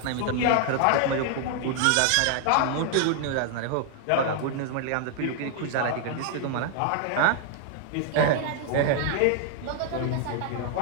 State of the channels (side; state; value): both; different; correlation 0.00